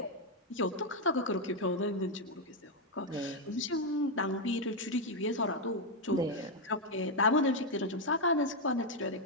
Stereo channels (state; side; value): normal; both; correlation 0.02